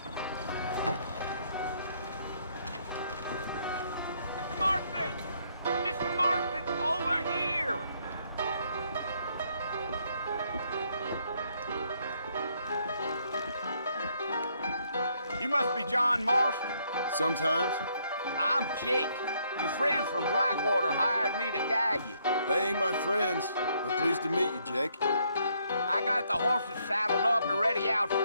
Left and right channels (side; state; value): both; inverted; correlation -0.71